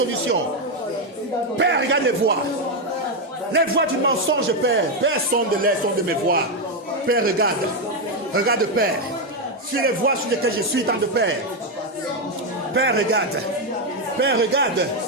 Père, regarde les voies. Les voies du mensonge, Père. Père, sonde de mes voies. Père, regarde. Regarde, Père. Sur les voies sur lesquelles je suis, tant de Père. Père, regarde. Père, regarde.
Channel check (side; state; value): both; normal; correlation 0.05